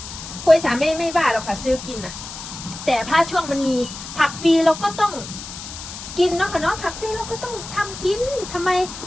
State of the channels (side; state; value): left; noise; hiss, 11 dB below the sound